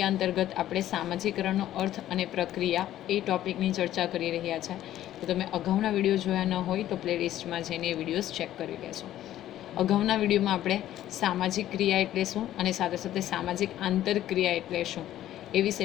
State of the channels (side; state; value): right; quieter; 12.9 dB